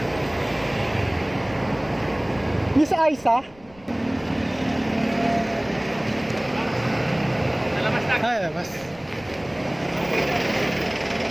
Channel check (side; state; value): left; noise; rumble, 25 dB below the sound